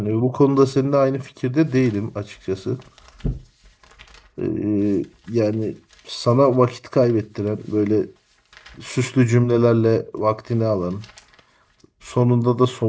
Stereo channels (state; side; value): identical; both; correlation 1.00